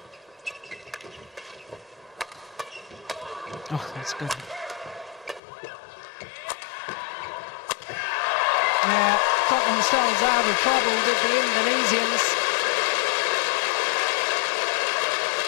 Oh, that's good. Yeah, got themselves out of trouble with the Indonesians.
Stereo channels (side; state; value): right; drops out; at 5.4 s